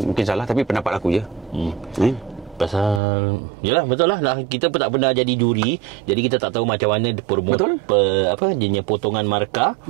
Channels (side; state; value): left; drops out; at 3.0 s